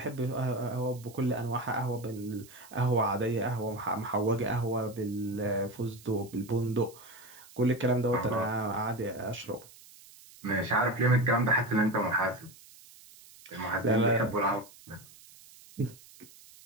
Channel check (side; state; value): right; noise; hiss, 22 dB below the sound